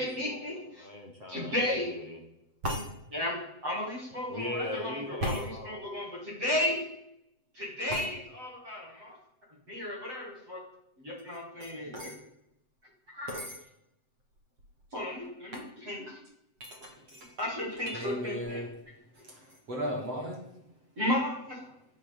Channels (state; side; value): late; left; 7.8 ms